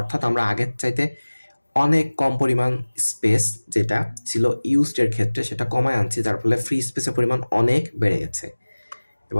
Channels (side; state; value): both; inverted; correlation -1.00